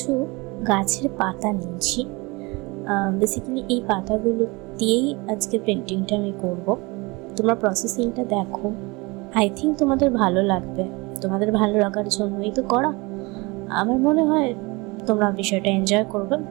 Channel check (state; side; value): quieter; left; 25.5 dB